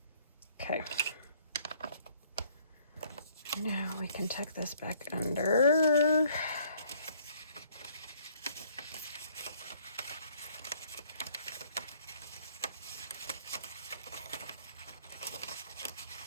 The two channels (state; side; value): inverted; both; correlation -0.61